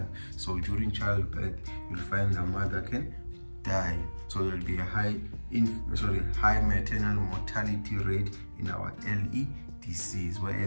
So during childbirth, you'll find the mother can die. So there'll be a high maternal mortality rate in our LEDCs,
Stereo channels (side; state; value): both; inverted; correlation -1.00